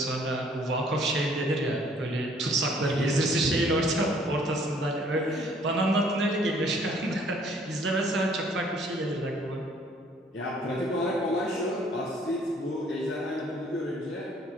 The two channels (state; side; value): normal; both; correlation 0.60